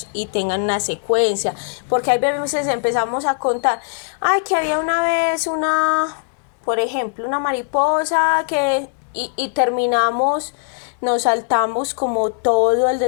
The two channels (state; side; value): silent; right; digital silence